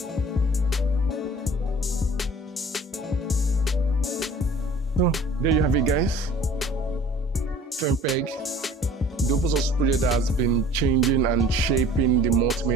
So, there you have it, guys. FFmpeg, the open source project that has been changing and shaping the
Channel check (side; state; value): both; normal; correlation 0.48